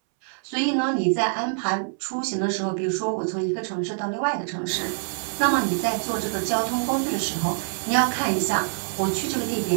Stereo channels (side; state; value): left; silent; 62 dB below the other